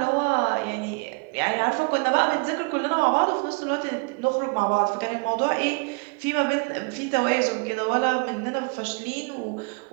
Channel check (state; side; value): quieter; left; 33.2 dB